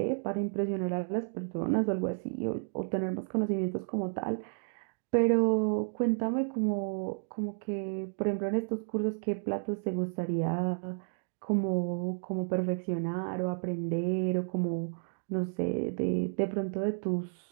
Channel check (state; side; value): silent; left; digital silence